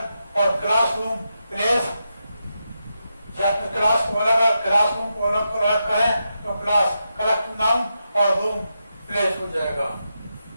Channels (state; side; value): inverted; both; correlation -0.86